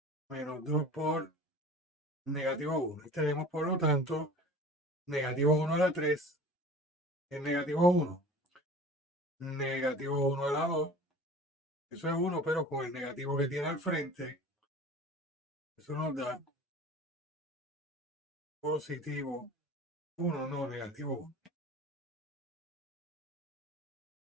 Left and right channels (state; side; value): normal; both; correlation 0.41